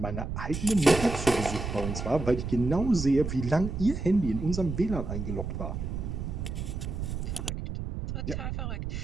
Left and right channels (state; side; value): noise; right; rumble, 5 dB below the sound